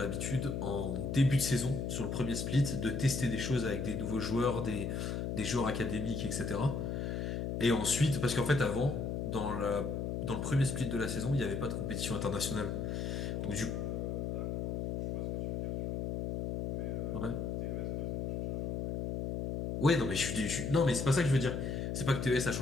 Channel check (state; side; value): noise; left; hum, 2 dB below the sound